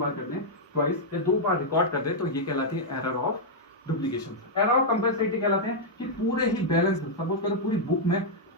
करते हैं, ट्वाइस या 2 बार रिकॉर्ड करते हैं, तो ये कहलाती है error of duplication. Error of compensating कहलाते हैं कि पूरे ही बैलेंस, सपोज करो पूरी बुक में,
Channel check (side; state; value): both; normal; correlation -0.05